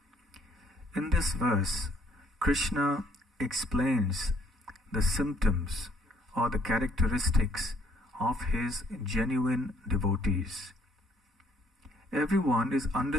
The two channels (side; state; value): both; normal; correlation 0.64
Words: In this verse, Krishna explains the symptoms or the characteristics of his genuine devotees. Everyone is